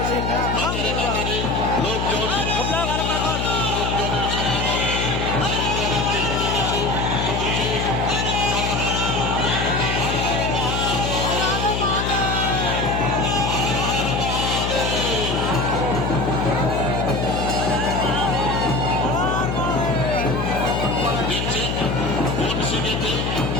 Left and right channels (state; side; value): noise; left; hum, 1 dB below the sound